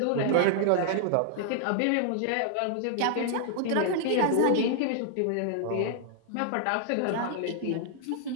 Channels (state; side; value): different; both; correlation -0.01